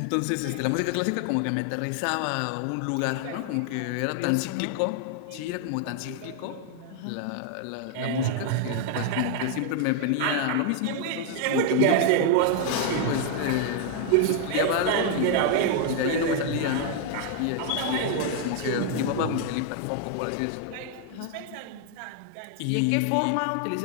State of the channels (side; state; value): both; different; correlation 0.00